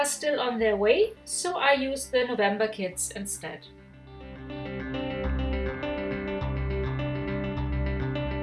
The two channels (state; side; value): identical; both; correlation 1.00